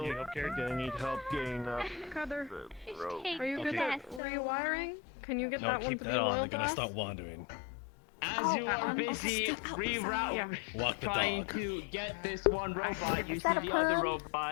gonna need help getting up. Cutter, the rope. are you good at rewiring? Can you get No, that one keep to be that on. oil They're gonna glass? stop wandering. As you are busy reroute, Walk the trying dog. to get this one robot, you see that a the other pun?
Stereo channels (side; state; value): right; drops out; at 4.2 s